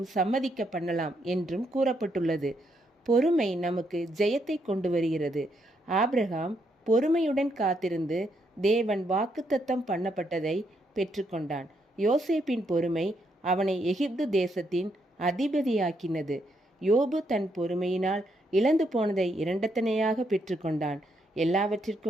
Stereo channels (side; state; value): both; normal; correlation 0.77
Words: சம்மதிக்க பண்ணலாம் என்றும் கூறப்பட்டுள்ளது. பொறுமை நமக்கு ஜெயத்தை கொண்டு வருகிறது. ஆபிரகாம் பொறுமையுடன் காத்திருந்து தேவன் வாக்குத்தத்தம் பண்ணப்பட்டதை பெற்றுக்கொண்டான். யோசேப்பின் பொறுமை அவனை எகிப்து தேசத்தின் அதிபதியாக்கினது. யோபு தன் பொறுமையினால் இழந்து போனதை இரண்டத்தனையாக பெற்றுக்கொண்டான்.